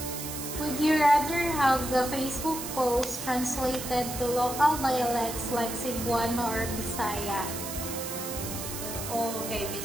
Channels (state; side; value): noise; right; hiss, 7 dB below the sound